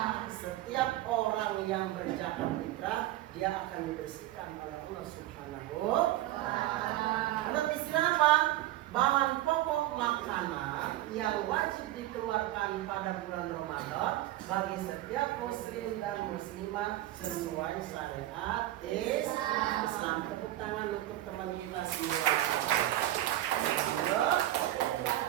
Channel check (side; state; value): left; quieter; 15.0 dB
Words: Setiap orang yang berzakat fitrah dia akan dibersihkan oleh Allah Subhanahu wa Ta'ala. Menurut istilah apa? Bahan pokok makanan yang wajib dikeluarkan pada bulan Ramadan bagi setiap muslim dan muslimah sesuai syariat Islam. Tepuk tangan untuk teman kita semua.